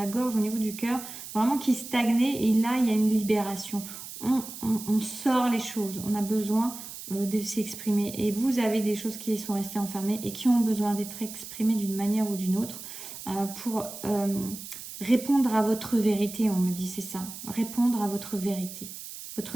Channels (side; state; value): right; noise; hiss, 11 dB below the sound